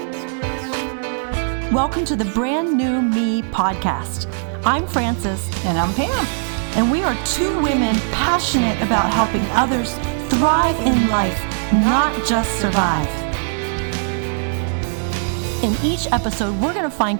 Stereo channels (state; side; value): silent; left; digital silence